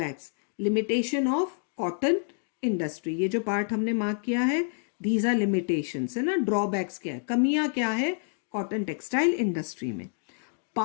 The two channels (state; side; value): silent; right; 59 dB below the other